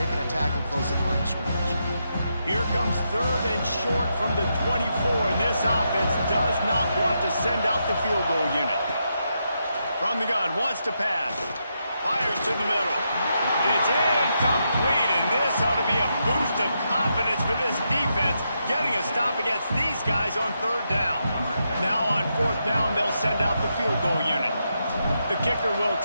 a tackle close at the line of scrimmage. Here comes third and short from the 24, and this offense does not want to send out the field goal unit. From the gun, wants to pass. Fires to the middle. It's incomplete, and this ought to be a boost of confidence for this defense, getting a stop against these guys on third down. Now on fourth down, they'll send out the field goal unit. The kicker will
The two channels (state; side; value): inverted; both; correlation -0.83